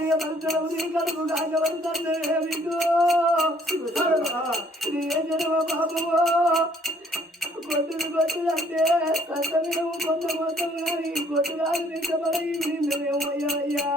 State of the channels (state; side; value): normal; both; correlation 0.62